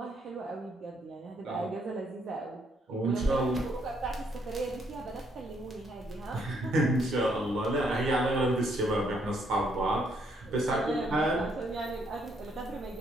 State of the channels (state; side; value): normal; both; correlation 0.71